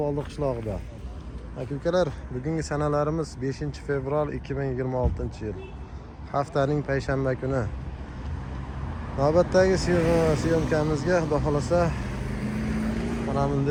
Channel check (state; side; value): identical; both; correlation 1.00